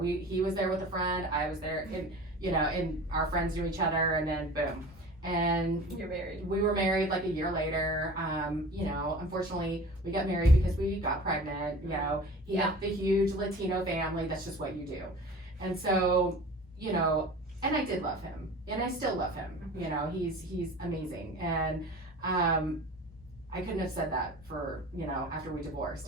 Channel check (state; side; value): normal; both; correlation 0.40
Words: he was there with a friend, I was there, and, you know, and our friends knew each other, and then boom. And you're married. We were married like a year later. You know, unfortunately, we got married because we got pregnant. You know, he had the huge Latino family. That's just what you do. And so, you know, and I did love him, and I still love him. You know, he's amazing. And I couldn't have said that for, after we